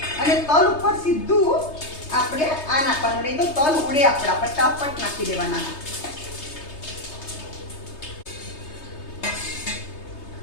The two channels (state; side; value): late; right; 3.3 ms